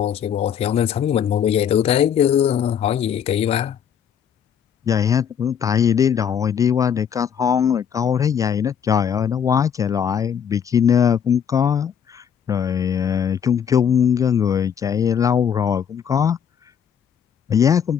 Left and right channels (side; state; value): right; quieter; 8.1 dB